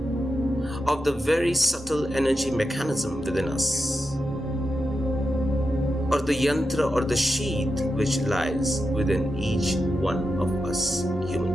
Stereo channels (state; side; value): normal; both; correlation 0.89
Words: of the very subtle energy mechanism within us, or the yantra or the sheath which lies within each one of us